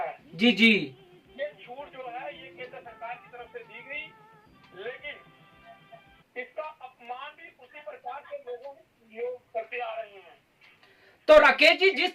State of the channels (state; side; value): identical; both; correlation 1.00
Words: है। जी ये छूट जो है ये केंद्र सरकार की तरफ से दी गई, लेकिन इसका अपमान भी उसी प्रकार के लोग करते आ रहे हैं। तो राकेश जी, जिस